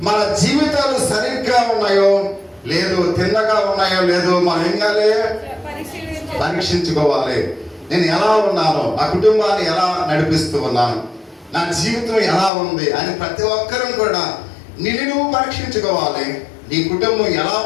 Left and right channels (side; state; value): right; drops out; at 12.5 s